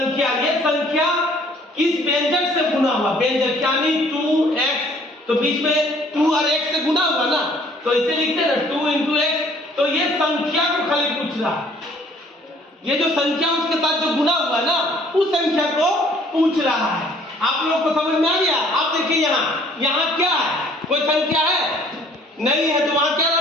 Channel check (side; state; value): both; normal; correlation 0.58